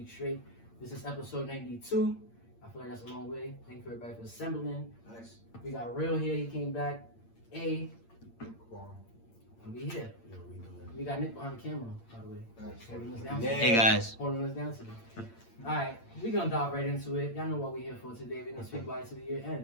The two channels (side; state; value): right; late; 8.7 ms